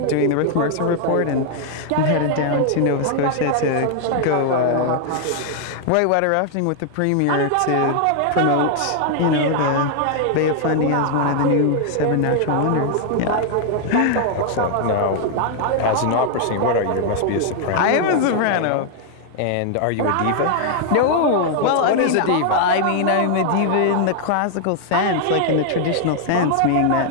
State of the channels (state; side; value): different; both; correlation 0.00